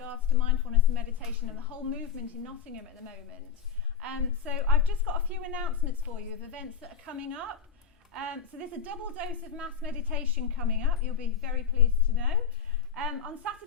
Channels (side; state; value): right; quieter; 7.6 dB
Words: to mindfulness and meditation and the whole movement in Nottingham at the moment. So I've just got a few announcements for you of events that are coming up. So there's a double dose of mass meditation coming up, you'll be very pleased to know. On